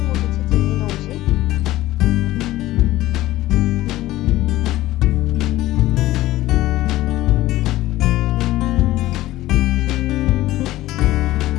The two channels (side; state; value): right; quieter; 16.1 dB